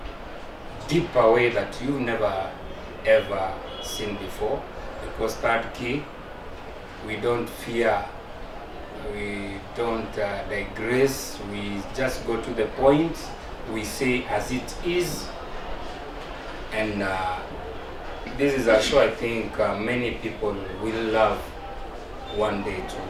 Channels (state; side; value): identical; both; correlation 1.00